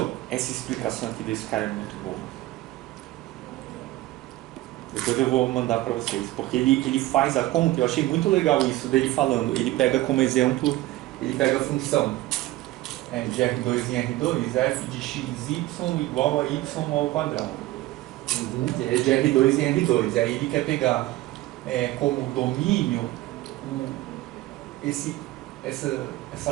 essa explicação aqui desse cara é muito boa. Depois eu vou mandar para vocês, porque ele faz a conta, eu achei muito legal isso dele falando. Ele pega como exemplo, ele pega a função de R2 em R2, f de xy igual a y ao quadrado. É de R2 em R2. Aí ele quer pegar como domínio essa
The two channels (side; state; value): left; quieter; 17.0 dB